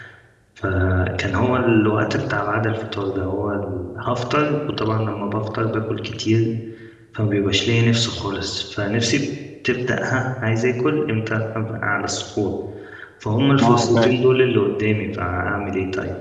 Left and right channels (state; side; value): identical; both; correlation 1.00